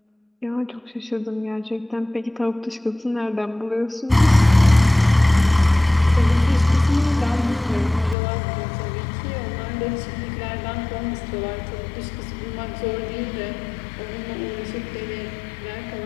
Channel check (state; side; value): drops out; right; at 8.2 s